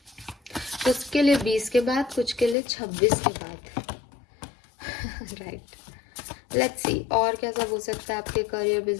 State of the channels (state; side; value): drops out; right; at 2.6 s